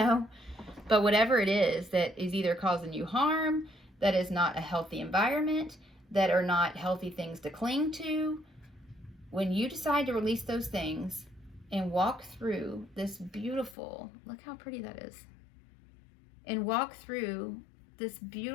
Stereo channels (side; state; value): right; drops out; at 13.8 s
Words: but whatever it is that is either causing you harm, that is not a healthy environment, that are not healthy things to cling to. When you decide to release those things and walk through this beautiful, look how pretty that is. and walk through this